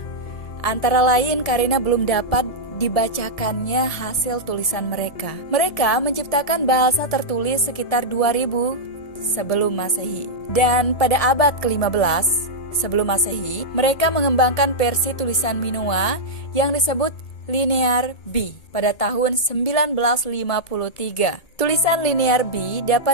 antara lain karena belum dapat dibacakannya hasil tulisan mereka. Mereka menciptakan bahasa tertulis sekitar 2000 sebelum Masehi. Dan pada abad ke-15 sebelum Masehi, mereka mengembangkan versi tulisan Minoa yang disebut Linear B pada tahun 1953. Tulisan Linear B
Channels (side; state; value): right; late; 1.7 ms